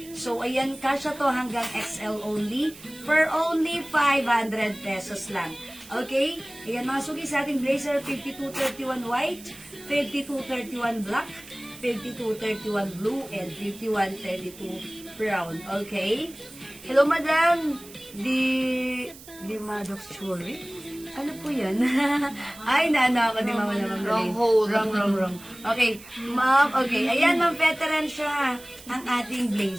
So, ayan, kasya to hanggang XL only for only 500 pesos lang. Okay? Ayan, mga suki sa ating blazer, 5231 white, 5231 black, 5231 blue, and 5132 brown. Okay? Hello, madam. Di Maddox Jewelry? Ano po yan? Ay, naano ako, di mama naman. Wrong hole. Wrong. Okay, ma'am, okay. Ayan, ma'am, veteran siya. Ang ating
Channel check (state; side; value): noise; right; hiss, 19 dB below the sound